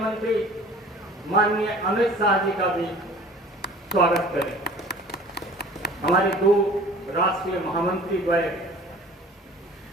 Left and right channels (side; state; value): both; normal; correlation 0.46